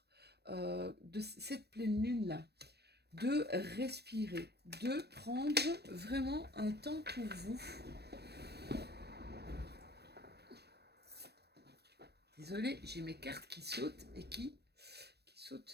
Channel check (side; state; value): left; late; 0.47 ms